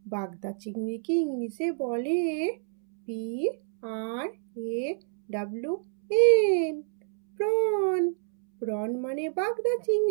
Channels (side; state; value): left; silent; 60 dB below the other